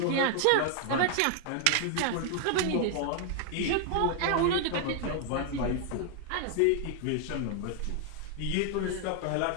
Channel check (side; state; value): both; different; correlation 0.00